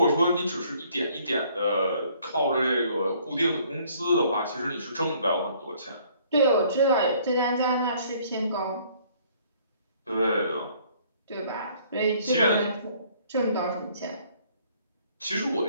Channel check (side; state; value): both; inverted; correlation -0.60